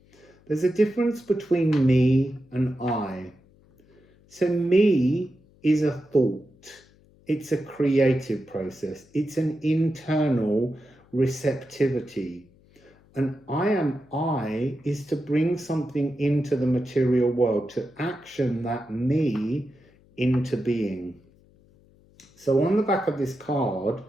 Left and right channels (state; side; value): noise; left; hum, 30 dB below the sound